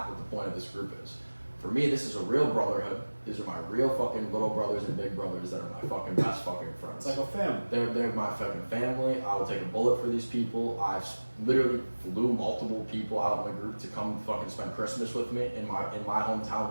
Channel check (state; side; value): inverted; both; correlation -1.00